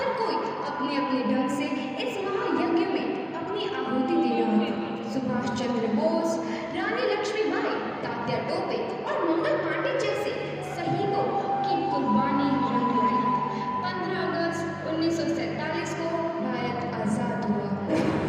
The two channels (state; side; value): identical; both; correlation 1.00